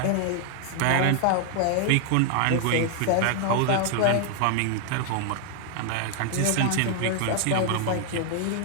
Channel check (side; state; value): both; different; correlation 0.00